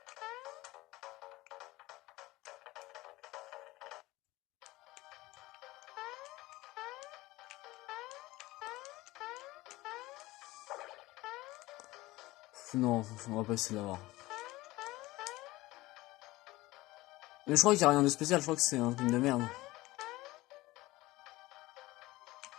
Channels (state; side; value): quieter; right; 19.0 dB